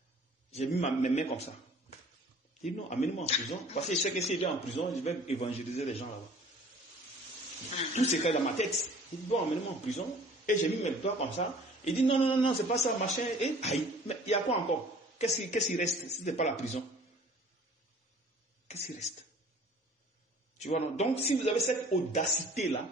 J'ai mis mes mains comme ça. Il dit non, amenez-moi en prison. Parce que je sais que s'il est en prison, je vais évangéliser les gens là-bas. Tout c'est dans ma tête. Il dit bon, amenez-moi en prison. Et j'ai mis mes doigts comme ça. Il dit non, c'est pas ça, machin. Et aïe, mais il y a quoi encore? Qu'est-ce qui reste si ce n'est pas la prison? Qu'est-ce qui reste? Tu vois, non? Donc si vous avez cette audacité-là,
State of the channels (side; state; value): both; normal; correlation 0.50